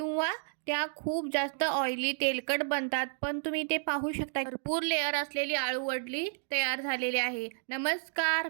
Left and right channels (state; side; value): silent; left; digital silence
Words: त्या खूप जास्त ऑइली तेलकट बनतात. पण तुम्ही ते पाहू शकता, भरपूर लेअर असलेली अळूवडी तयार झालेली आहे. नमस्कार,